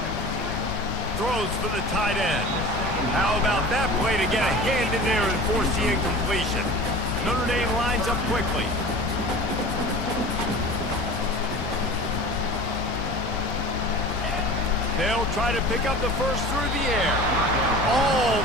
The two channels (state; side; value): normal; both; correlation 0.37